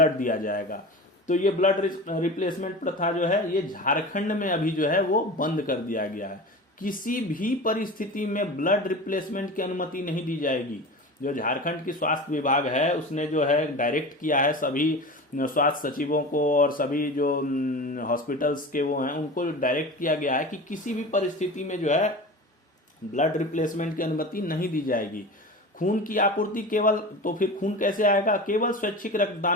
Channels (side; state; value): both; normal; correlation 0.32